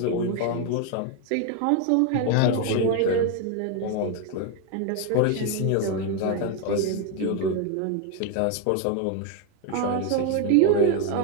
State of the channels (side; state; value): both; different; correlation 0.01